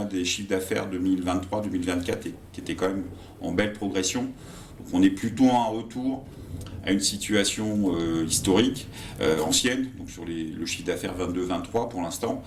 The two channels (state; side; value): identical; both; correlation 1.00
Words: des chiffres d'affaires 2023-2024 qui étaient quand même en belle progression. Donc on est plutôt en retour à une situation historique, ancienne, donc sur le chiffre d'affaires 22-23 pour l'instant.